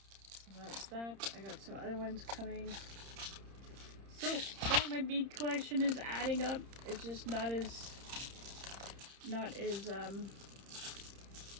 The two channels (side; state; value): left; late; 30 ms